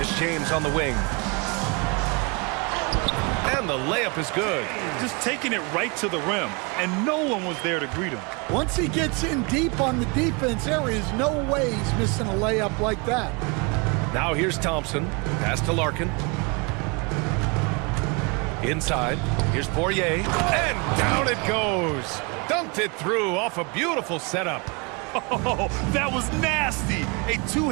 James on the wing. And the layup is good. Just taking it right to the rim, and no one was there to greet him. Once he gets in deep on the defense, there is no way he's missing a layup like that. Now here's Thompson. Pass to Larkin. Inside. Here's Poirier. And down it goes. Dunked it through off a beautiful setup. Oh, that was nasty. A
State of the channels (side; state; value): left; quieter; 30.4 dB